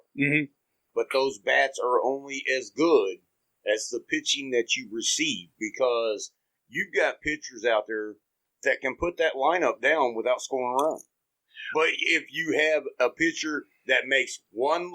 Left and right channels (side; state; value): both; identical; correlation 1.00